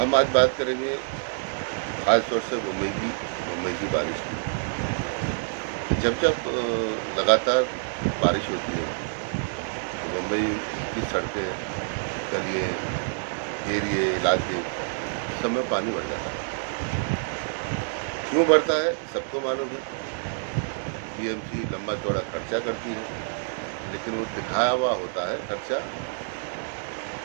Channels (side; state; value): left; silent; 60 dB below the other